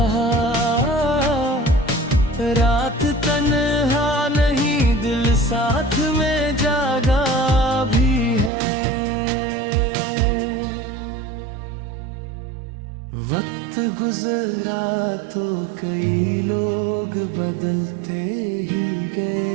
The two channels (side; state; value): left; drops out; at 8.5 s